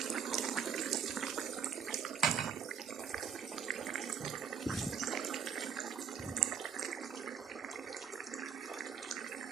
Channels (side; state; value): left; quieter; 7.0 dB